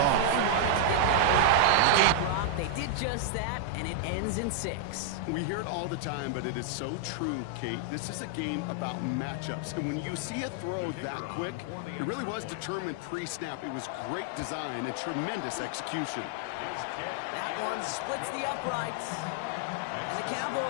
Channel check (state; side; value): different; both; correlation 0.00